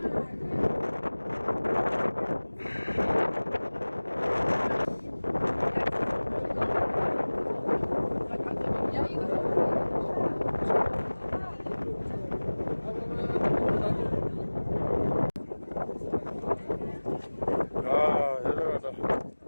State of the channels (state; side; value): inverted; both; correlation -1.00